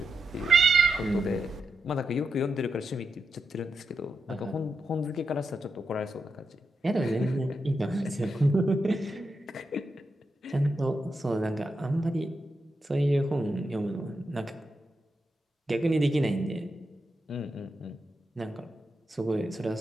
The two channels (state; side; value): normal; both; correlation 0.86